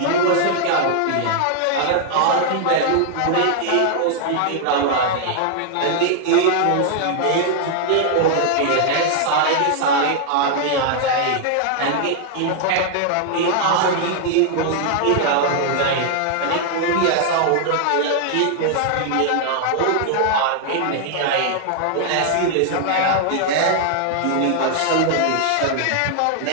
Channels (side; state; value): both; different; correlation 0.00